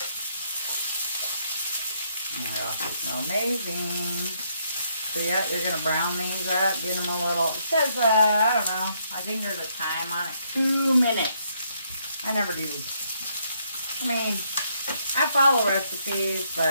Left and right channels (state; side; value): inverted; both; correlation -0.73